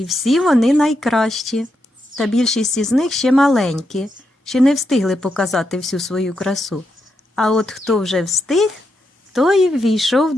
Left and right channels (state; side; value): normal; both; correlation 0.83